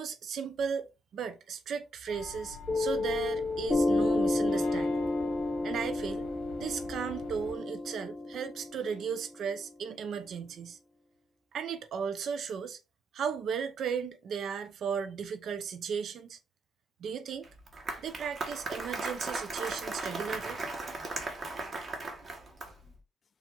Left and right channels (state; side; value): normal; both; correlation 0.80